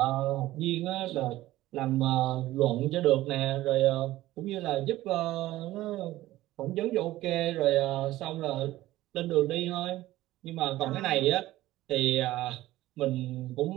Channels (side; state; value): left; quieter; 16.1 dB